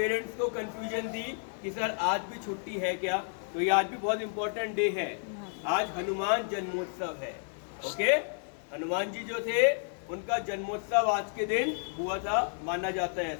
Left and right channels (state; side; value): silent; right; 57 dB below the other